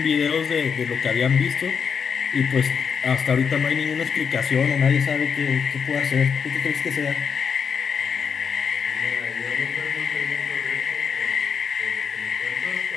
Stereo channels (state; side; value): quieter; right; 6.6 dB